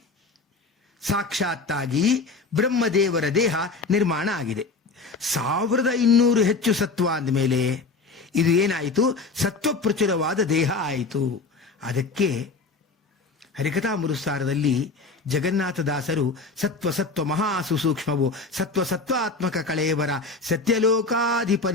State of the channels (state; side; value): quieter; right; 4.0 dB